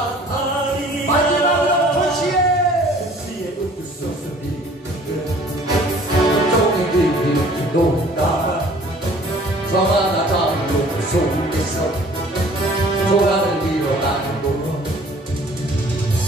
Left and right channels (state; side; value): normal; both; correlation 0.52